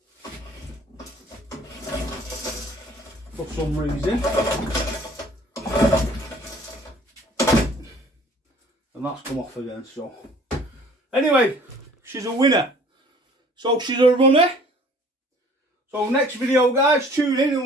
For some reason. And that's come off again, so. Anyway, she's a winner. So she's a runner. So next video, guys, tune in and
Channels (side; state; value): both; normal; correlation 0.52